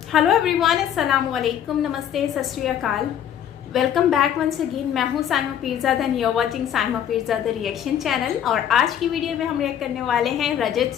हेलो एवरीवन, अस्सलाम वालेकुम, नमस्ते, सत श्री अकाल। Welcome back once again. मैं हूँ Saima Peerzada and you are watching Saima Peerzada reaction channel. और आज की वीडियो में हम रिएक्ट करने वाले हैं रजत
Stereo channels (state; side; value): quieter; right; 9.8 dB